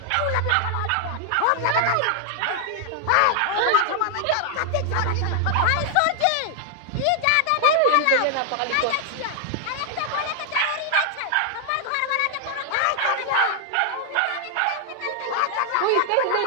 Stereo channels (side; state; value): both; different; correlation 0.00